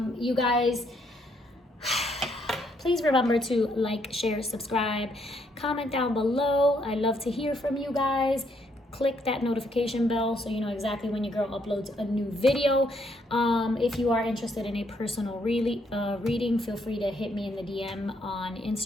You guys, please remember to like, share, subscribe, comment down below. I love to hear from you guys. click that notification bell so you know exactly when your girl uploads a new video. If you are interested in a personal reading, feel free to hit me in the DM on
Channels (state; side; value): normal; both; correlation 0.72